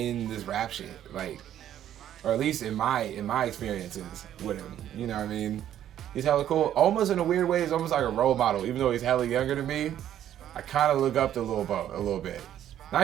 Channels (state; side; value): quieter; left; 11.1 dB